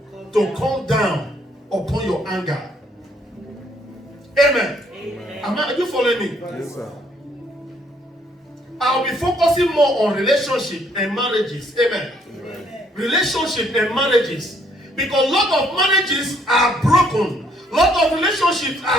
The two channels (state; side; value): normal; both; correlation 0.67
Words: to come down upon your anger. Amen. Amen. Are you following me? Yes, sir. I'll be focusing more on relationship and marriages. Amen. Amen. Relationship and marriages. Because a lot of marriages are broken. A lot of relationships